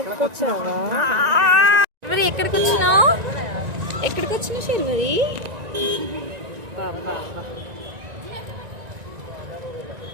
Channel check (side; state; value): left; late; 1.9 ms